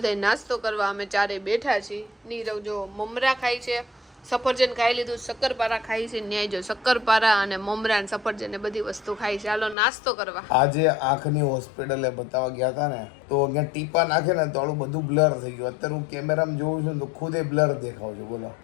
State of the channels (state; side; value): drops out; right; at 9.8 s